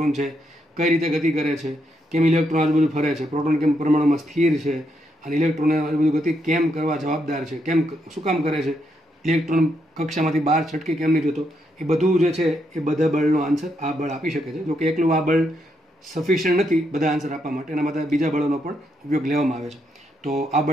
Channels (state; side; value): normal; both; correlation 0.79